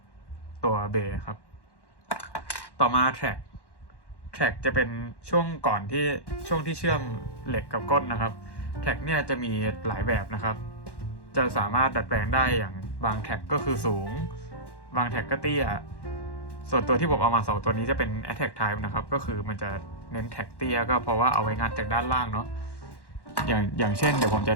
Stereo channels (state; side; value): late; right; 1.1 ms